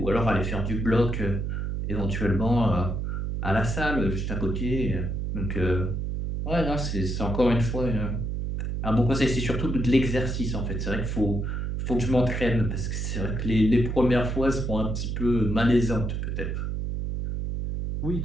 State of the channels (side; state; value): right; noise; hum, 2 dB below the sound